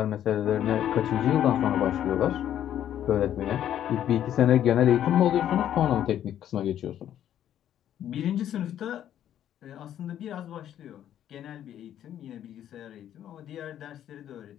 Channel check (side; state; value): right; quieter; 10.9 dB